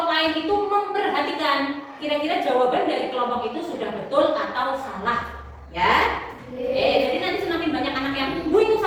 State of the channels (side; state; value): both; identical; correlation 1.00